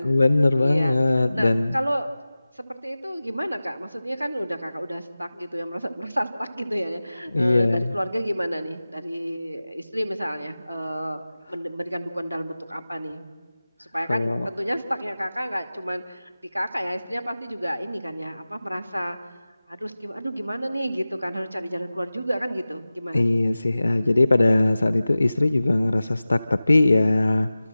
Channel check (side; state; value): both; inverted; correlation -0.96